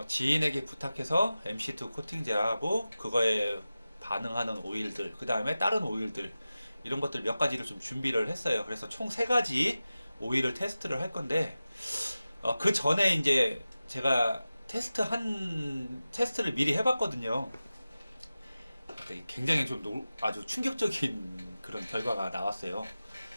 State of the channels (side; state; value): both; inverted; correlation -0.95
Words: 지인에게 부탁해서 MC2 코팅제하고 그거에 반응하는 오일들, 그 다음에 다른 오일들 이런 것들 몇 가지를 좀 준비를 했어요. 그래서 총 세 가지 오일을 테스트를 할 건데 그 전에 이제 제가 테스트를 미리 해봤거든요. 굉장히 좀 아주 충격적인 그런 결과가 나왔어요.